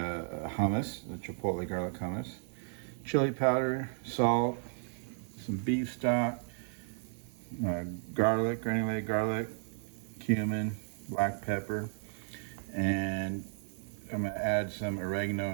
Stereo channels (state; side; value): silent; left; digital silence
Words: the chipotle garlic hummus. Chili powder, salt, some beef stock, garlic, granulated garlic, cumin, black pepper, and I'm gonna add some